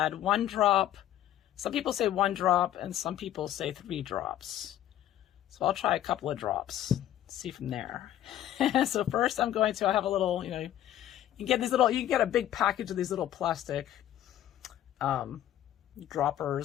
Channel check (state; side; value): quieter; right; 12.4 dB